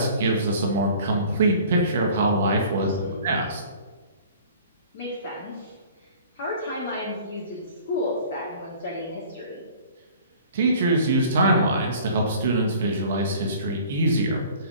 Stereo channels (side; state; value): both; inverted; correlation -0.48